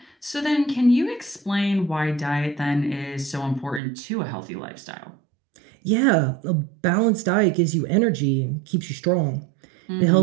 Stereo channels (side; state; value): left; drops out; at 3.8 s